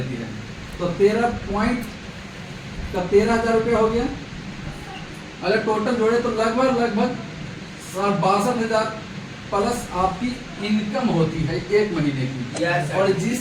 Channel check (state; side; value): identical; both; correlation 1.00